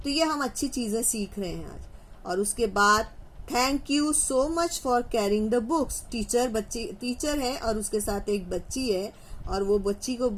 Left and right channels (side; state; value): both; identical; correlation 1.00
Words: तो ये हम अच्छी चीजें सीख रहे हैं आज। और उसके बाद thank you so much for carrying the books. Teacher है और उसके साथ एक बच्ची है, और वो बच्ची को